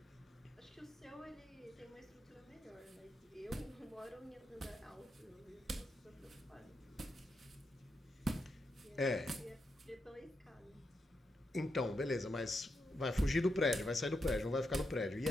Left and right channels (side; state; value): both; normal; correlation 0.84